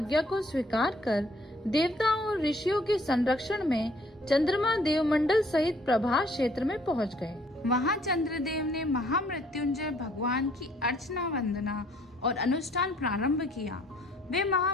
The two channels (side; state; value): both; normal; correlation 0.61